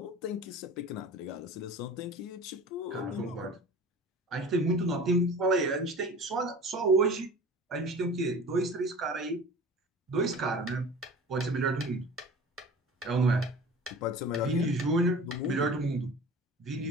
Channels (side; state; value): both; normal; correlation 0.39